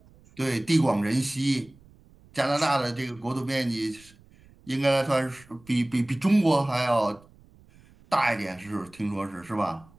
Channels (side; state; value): right; noise; rumble, 27 dB below the sound